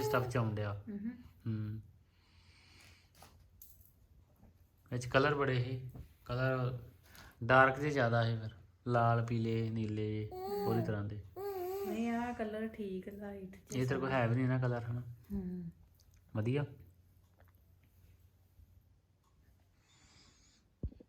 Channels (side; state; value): both; identical; correlation 1.00